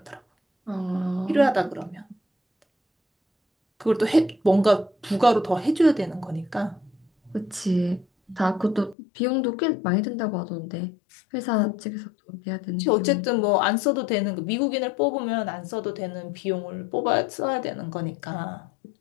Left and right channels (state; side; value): drops out; right; at 9.0 s